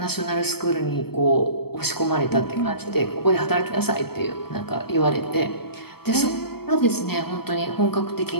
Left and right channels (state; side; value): late; right; 0.96 ms